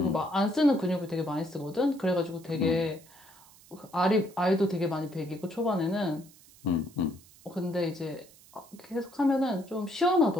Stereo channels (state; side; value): noise; right; hiss, 24 dB below the sound